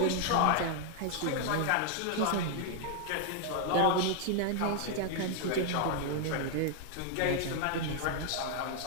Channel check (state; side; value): different; both; correlation 0.00